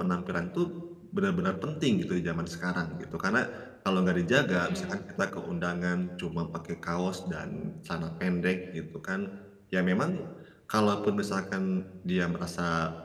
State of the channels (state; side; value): identical; both; correlation 1.00